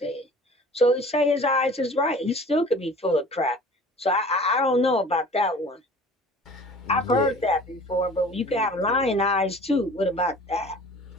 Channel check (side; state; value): both; normal; correlation 0.45